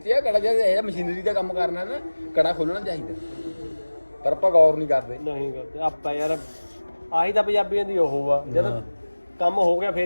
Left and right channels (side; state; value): both; inverted; correlation -1.00